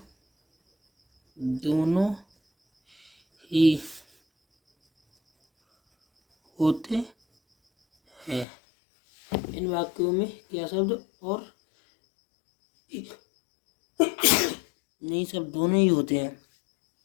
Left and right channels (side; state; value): right; drops out; at 8.5 s